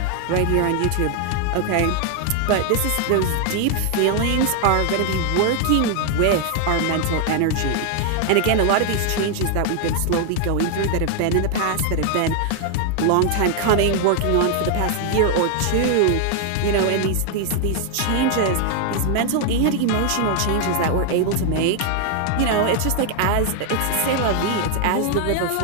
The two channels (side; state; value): both; different; correlation 0.00